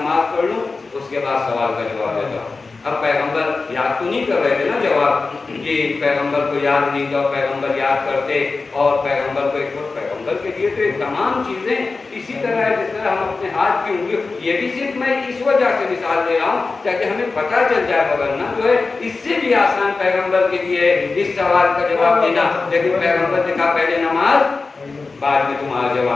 پڑھ لوں اس کے بعد سوال کا جواب دیتا ہوں۔ اب پیغمبر یاد تو نہیں کر رہے تھے نا جواب، کہ پیغمبر کو یاد نہیں تھا، پیغمبر یاد کرتے اور پیغمبر کو ایک وقت پیغمبر کے لیے تو تمام چیزیں اسی طرح ہے جس طرح ہم اپنے ہاتھ کی انگلی، یہ بھی صرف میں اس وجہ سے مثال دے رہا ہوں تاکہ ہمیں پتہ چل جائے، ورنہ جو ہے اس سے بھی آسان پیغمبر کے لیے اس سوال کا جواب دینا، لیکن پیغمبر نے کہا پہلے نماز بعد میں تمہارا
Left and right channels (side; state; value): right; quieter; 4.0 dB